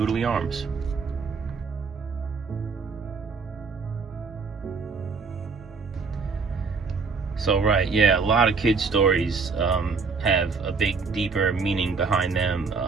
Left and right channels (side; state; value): left; quieter; 4.8 dB